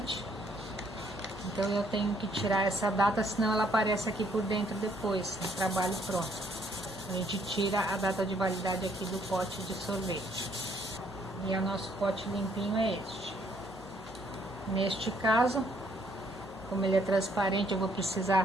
então eu tenho que tirar essa data, senão ela aparece aqui por dentro depois, no trabalho pronto. A gente tira a data de validade aqui do pote de sorvete. E o nosso pote limpinho é este. Neste caso, como ele é transparente, eu vou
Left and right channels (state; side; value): normal; both; correlation 0.67